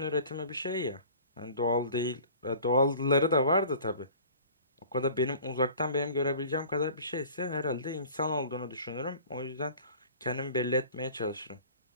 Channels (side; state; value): both; inverted; correlation -0.45